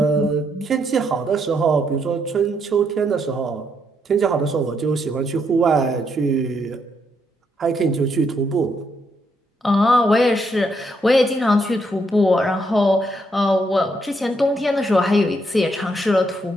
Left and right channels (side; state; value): both; normal; correlation 0.76